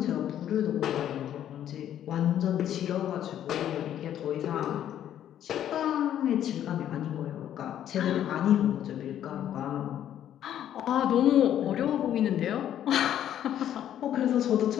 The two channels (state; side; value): quieter; right; 10.8 dB